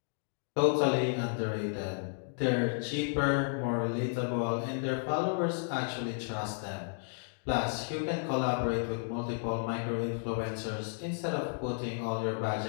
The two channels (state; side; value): silent; right; digital silence